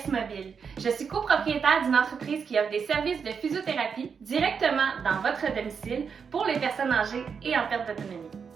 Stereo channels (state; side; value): quieter; left; 6.2 dB